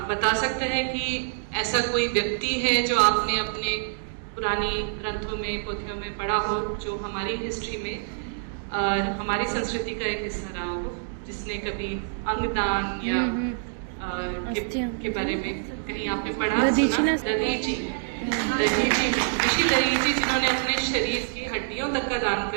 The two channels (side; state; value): left; silent; digital silence